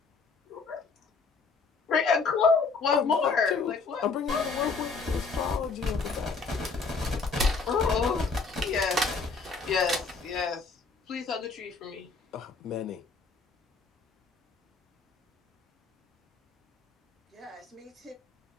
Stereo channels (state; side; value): quieter; right; 4.5 dB